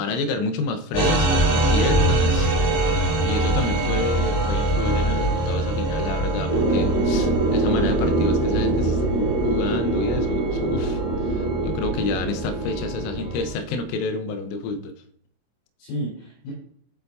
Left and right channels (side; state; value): right; late; 25 ms